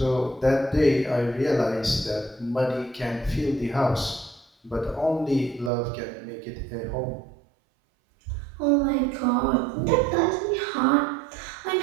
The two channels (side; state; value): left; drops out; at 5.7 s